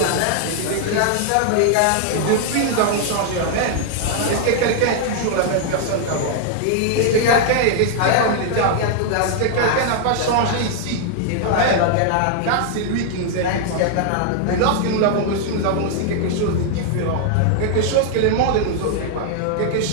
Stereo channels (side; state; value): both; different; correlation 0.00